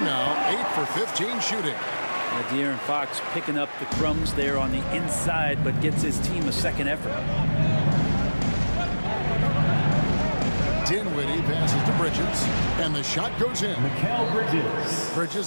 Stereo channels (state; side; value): inverted; both; correlation -1.00